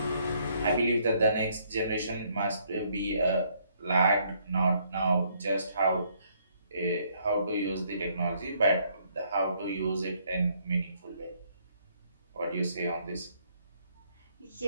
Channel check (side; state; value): both; inverted; correlation -0.68